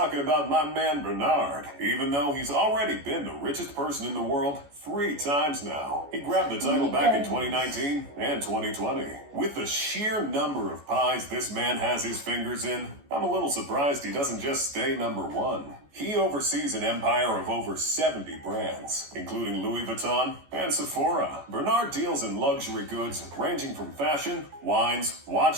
about my man Bernard, even though he's already been the richest person in the world 3 times now. He grabbed the title back in 2019 and 2020. With the sheer number of pies this man has his fingers in, I'm a little surprised he doesn't just stay number 1. He oversees an empire of over 70 brands, including Louis Vuitton and Sephora. Bernard deals in luxury goods ranging from fashion, wines,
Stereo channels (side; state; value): left; late; 14 ms